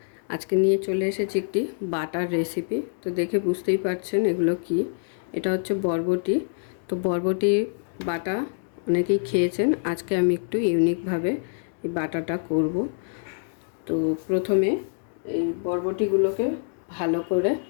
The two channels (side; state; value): right; silent; digital silence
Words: আজকে নিয়ে চলে এসেছি একটি বাটার রেসিপি। তো দেখে বুঝতেই পারছেন এগুলো কি। এটা হচ্ছে বরবটি। তো বরবটি বাটা অনেকেই খেয়েছেন, আজকে আমি একটু ইউনিকভাবে এই বাটাটা করব। তো প্রথমে এই বরবটিগুলোকে ভালো করে